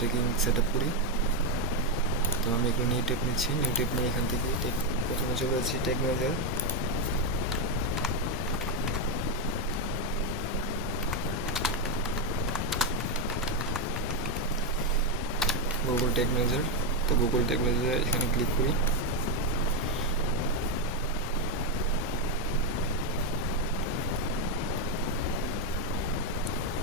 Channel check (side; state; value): both; normal; correlation 0.04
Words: set up করি। তো আমি একটু নিউ ট্যাব নিচ্ছি। নিউ ট্যাব নিয়ে এখান থেকে প্রথমে চলে যাচ্ছি tag manager. Google tag manager. তো গুগল ট্যাগ ম্যানেজার এখানে ক্লিক করি।